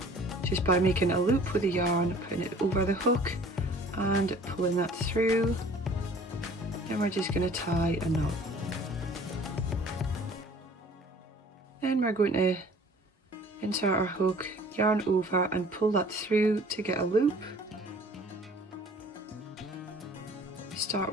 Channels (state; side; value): normal; both; correlation 0.51